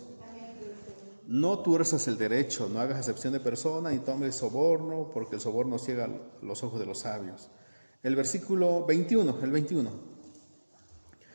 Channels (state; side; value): inverted; both; correlation -1.00